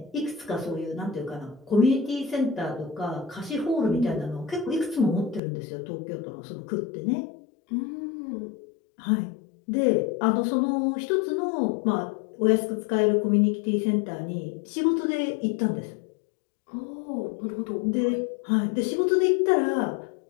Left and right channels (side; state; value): right; drops out; at 5.4 s